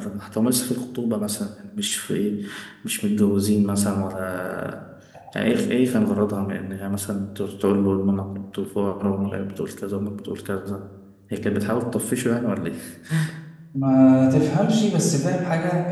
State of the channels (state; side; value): identical; both; correlation 1.00